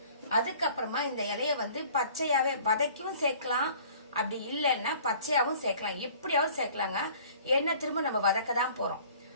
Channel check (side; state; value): both; inverted; correlation -0.51